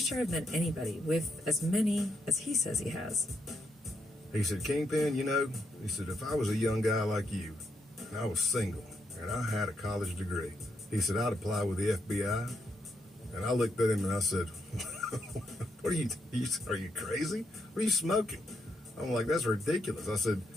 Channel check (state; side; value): normal; both; correlation 0.79